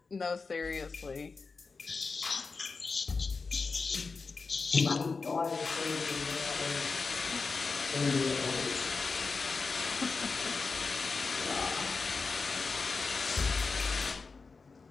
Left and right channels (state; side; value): quieter; right; 4.4 dB